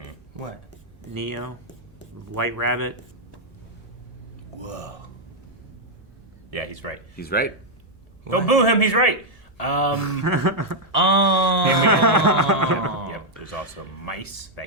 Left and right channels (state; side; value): normal; both; correlation -0.02